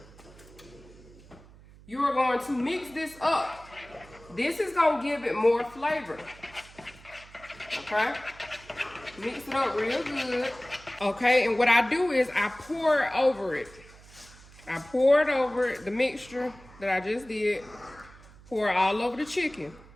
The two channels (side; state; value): right; noise; hum, 22 dB below the sound